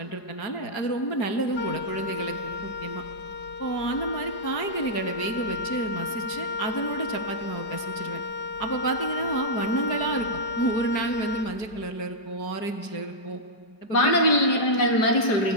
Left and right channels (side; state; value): right; late; 4.8 ms